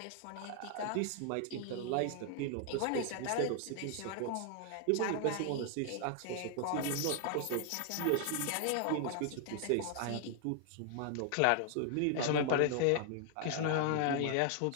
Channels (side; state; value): both; different; correlation 0.00